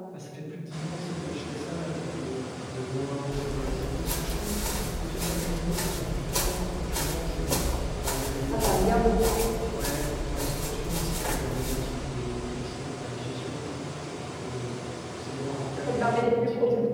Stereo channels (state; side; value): identical; both; correlation 1.00